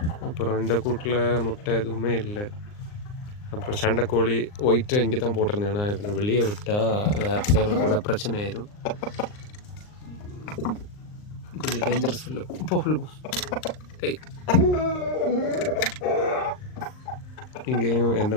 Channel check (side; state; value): right; late; 39 ms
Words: அப்புறம் இந்த கூட்டில் முட்டை எதுவுமே இல்லை. அப்புறம் சண்டைக்கோழி ஒயிட்டை இங்கே தான் போட்டிருந்தேன். ஏன்னா இவனை வெளியே விட்டால் வேறு சேவல் கூட பிரச்சனை ஆயிரும். கொஞ்சம் டேஞ்சரஸ் ஃபுல்லு. போ. இங்கேயும் எந்த